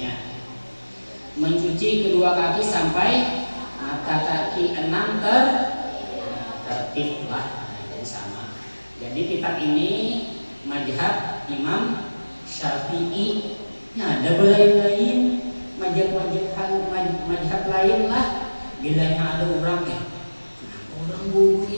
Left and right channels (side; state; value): both; inverted; correlation -1.00